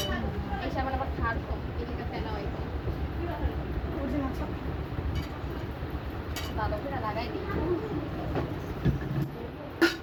এই সাবান আবার খার কম এদিকে ফেলা হয় অরিজিনাল সাবান ভালো করে লাগাই দিই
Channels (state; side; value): identical; both; correlation 1.00